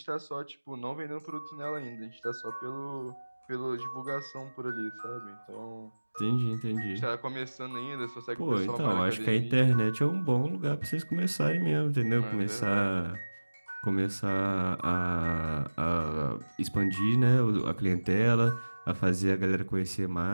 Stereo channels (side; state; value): both; inverted; correlation -1.00